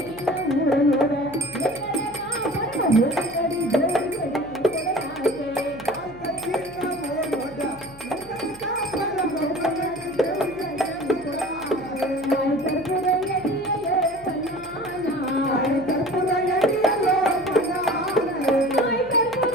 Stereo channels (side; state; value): right; noise; hum, 22 dB below the sound